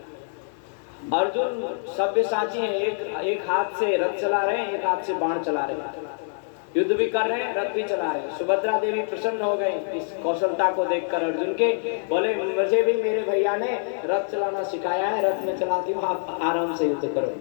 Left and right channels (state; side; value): silent; right; 62 dB below the other